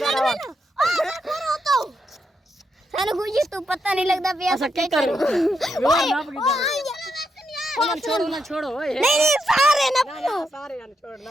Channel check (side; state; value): both; normal; correlation 0.82